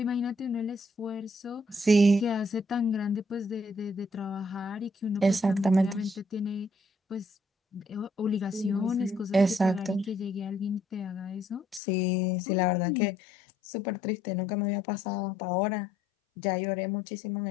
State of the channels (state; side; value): drops out; right; at 11.8 s